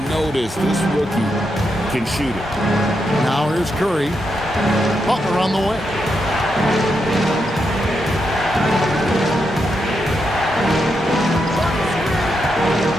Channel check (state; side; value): normal; both; correlation 0.83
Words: notice this rookie can shoot it. Now here's Curry. Butler on the way.